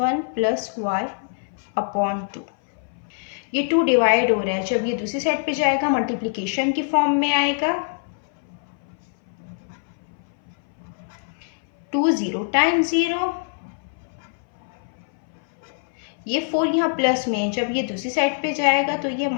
प्लस y अपॉन 2। ये 2 डिवाइड हो रहा है, जब ये दूसरी साइड पे जाएगा मल्टीप्लिकेशन की फॉर्म में आएगा। 2 0 टाइम्स 0, ये 4 यहाँ प्लस में है, जब ये दूसरी साइड पे जाएगा तो ये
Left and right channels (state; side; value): silent; right; 59 dB below the other